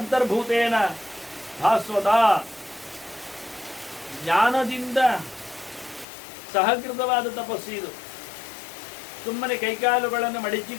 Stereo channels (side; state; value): right; drops out; at 6.1 s